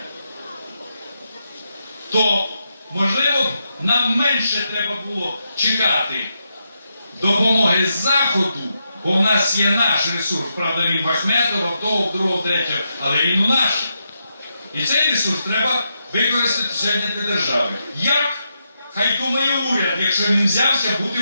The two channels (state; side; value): inverted; both; correlation -0.84